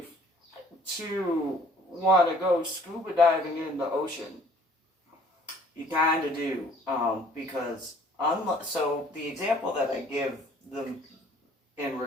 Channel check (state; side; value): normal; both; correlation 0.56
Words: to want to go scuba diving in the ocean. You kind of do. Because, so the example that I give them in